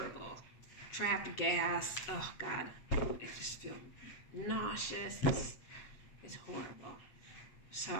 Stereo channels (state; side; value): late; right; 8.3 ms